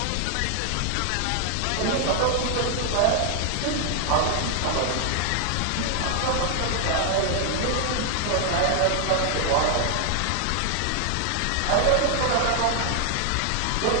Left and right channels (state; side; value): different; both; correlation 0.00